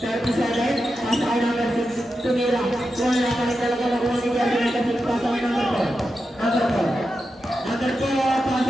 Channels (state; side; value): normal; both; correlation 0.89